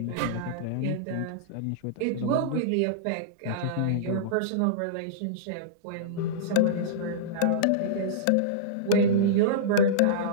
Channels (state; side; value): different; both; correlation -0.03